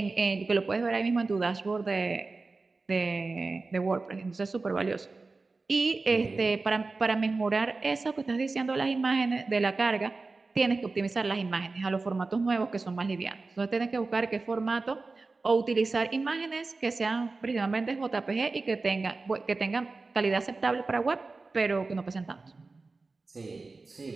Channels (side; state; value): left; quieter; 3.7 dB